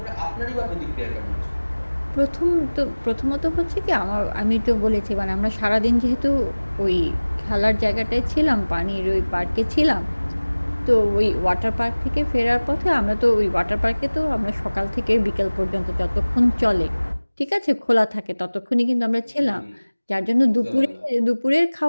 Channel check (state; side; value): inverted; both; correlation -1.00